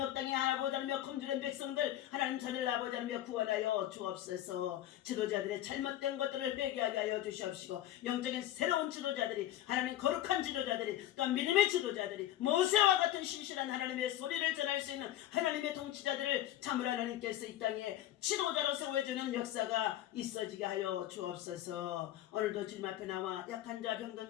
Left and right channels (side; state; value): right; quieter; 13.2 dB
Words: 땅에 아버지 하나며 검주된 백성들 하나님 자들 아버지 하나며 구원하여 주옵소서. 지도자들의 잘못된 것들을 회개하게 하여 주시옵시고 영적인 새로운 지도자들이 하나님 거룩한 지도자들이 또 믿음의 지도자들이 모세와 같은 신실한 하나님의 소리를 전할 수 있는 하나님의 통치자들을 참으로 하나님께서 이 땅에 지도자로 세워주는 역사가 있어지게 하여 주옵소서. 오늘도 주님 앞에 나와 약한 자, 병든